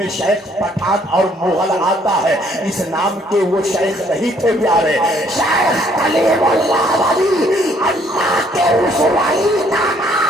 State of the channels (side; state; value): both; normal; correlation 0.64